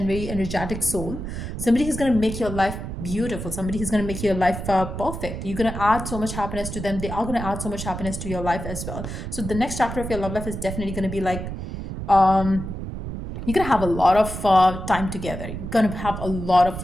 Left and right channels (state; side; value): noise; right; rumble, 7 dB below the sound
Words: very energetic soul. Somebody who's going to make your life beautiful. Somebody who's going to make your life perfect. You're going to add so much happiness to them. They are going to add so much happiness to your life as well. So the next chapter of your love life is definitely going to be like you're gonna have a lot of time together. You're gonna have a lot